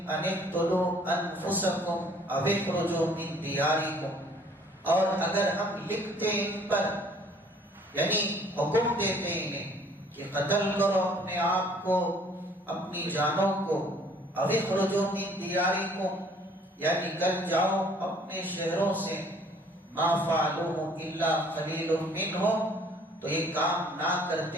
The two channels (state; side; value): normal; both; correlation 0.57